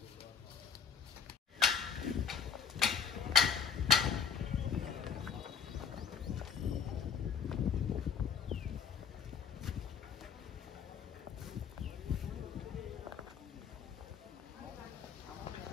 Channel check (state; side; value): quieter; right; 7.1 dB